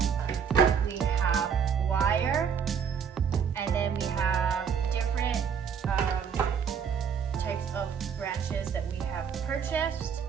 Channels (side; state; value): left; quieter; 7.0 dB